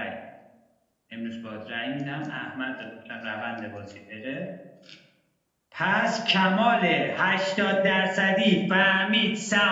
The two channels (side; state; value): both; identical; correlation 1.00